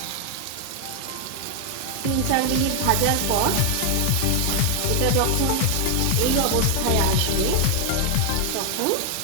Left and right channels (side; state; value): both; different; correlation 0.00